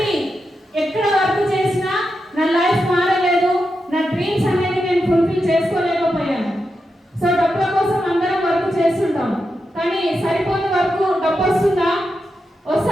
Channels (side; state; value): both; normal; correlation 0.87